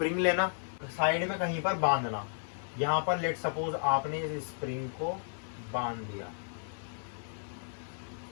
लेना, साइड में कहीं पर बांधना। यहाँ पर लेट सपोज आपने इस स्प्रिंग को बांध दिया,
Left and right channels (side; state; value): right; silent; digital silence